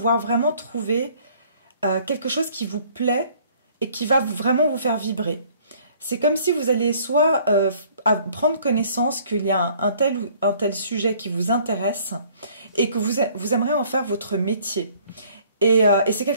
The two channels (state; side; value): inverted; both; correlation -0.58